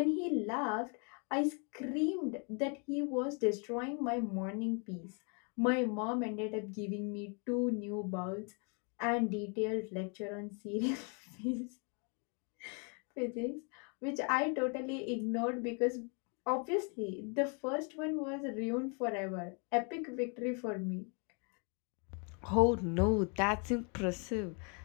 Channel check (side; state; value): right; quieter; 37.1 dB